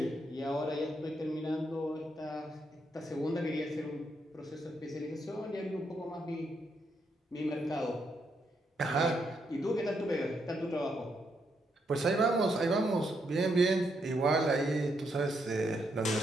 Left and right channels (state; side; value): normal; both; correlation 0.78